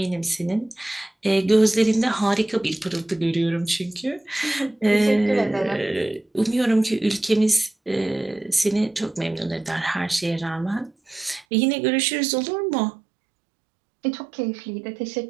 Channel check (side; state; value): left; drops out; at 11.5 s